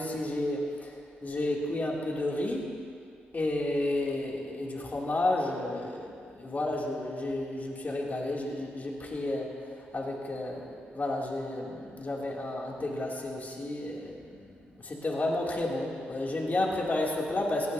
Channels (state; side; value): normal; both; correlation 0.86